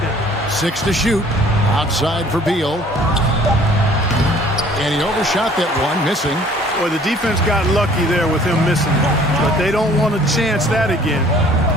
6 to shoot. Outside for Beal. And he overshot that one, missing. Well, the defense got lucky there with him missing, but they don't want to chance that again.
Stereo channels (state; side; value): normal; both; correlation 0.54